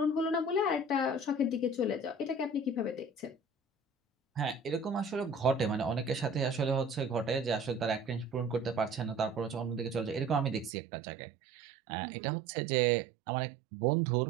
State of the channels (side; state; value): left; drops out; at 10.7 s